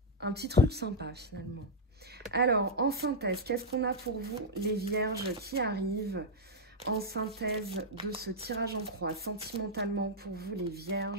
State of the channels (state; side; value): normal; both; correlation -0.03